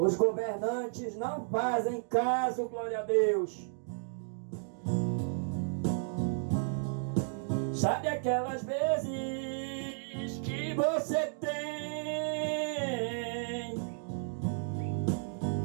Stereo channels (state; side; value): silent; left; digital silence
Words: governantes não fazem caso, glória a Deus. Sabe aquelas vezes que você tem